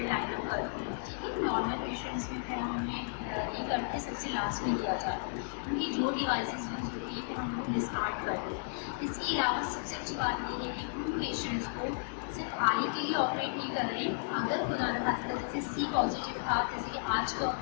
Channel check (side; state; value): right; silent; digital silence